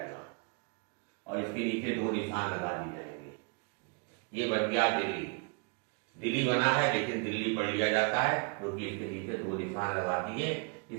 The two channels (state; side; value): quieter; left; 33.3 dB